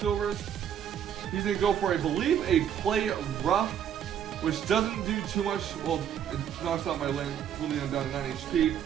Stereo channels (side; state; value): left; quieter; 9.3 dB